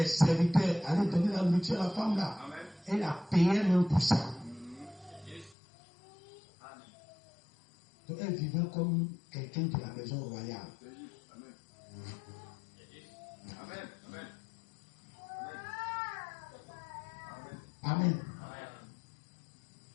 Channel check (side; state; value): right; drops out; at 5.6 s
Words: serviteurs aller donner la nourriture à la femme là. Elle a payé même pour ça. Donc elle vivait comme quelqu'un de la maison royale. Amen.